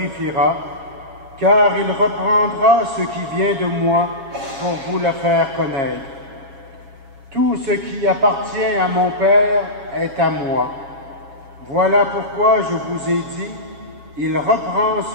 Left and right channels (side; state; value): left; late; 7.3 ms